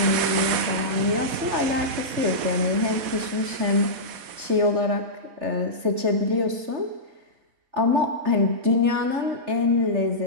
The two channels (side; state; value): left; late; 4.1 ms